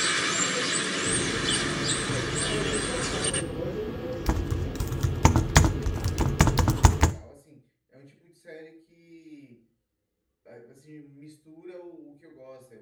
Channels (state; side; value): identical; both; correlation 1.00